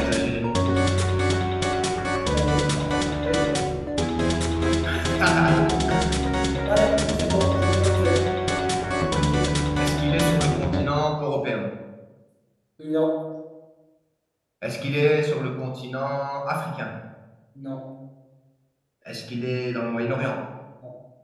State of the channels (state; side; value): identical; both; correlation 1.00